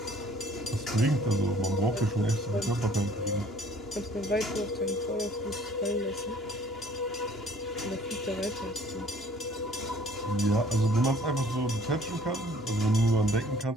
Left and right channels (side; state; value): both; normal; correlation 0.56